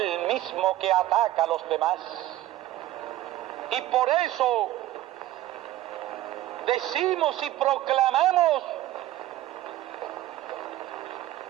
mismo que ataca a los demás. Y por eso decimos y proclamamos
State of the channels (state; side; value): quieter; left; 14.8 dB